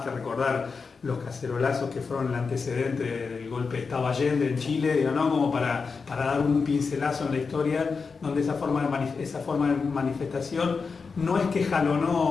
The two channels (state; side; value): quieter; right; 5.0 dB